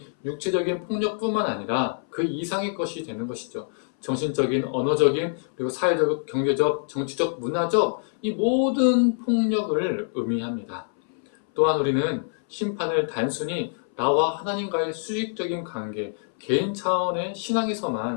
육체적인 폭력뿐만 아니라 그 이상의 것이 되는 것이죠. 정신적인, 언어적인, 그리고 사회적, 경제적, 정치적, 문화적 이 모든 폭력을 의미합니다. 또한 우리는 심판을 단순히 나와 하나님과의 수직적인 관계, 개인 차원의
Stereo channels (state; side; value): silent; right; 61 dB below the other